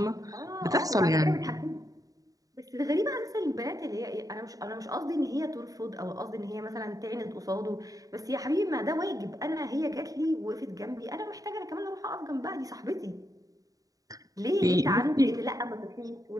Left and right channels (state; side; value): late; left; 0.17 ms